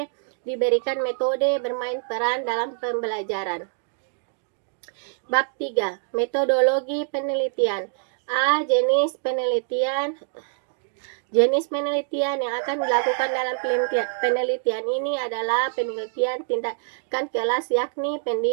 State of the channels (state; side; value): silent; left; digital silence